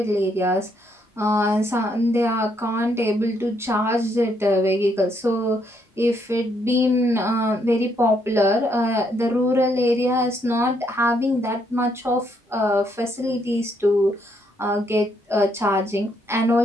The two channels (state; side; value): normal; both; correlation 0.73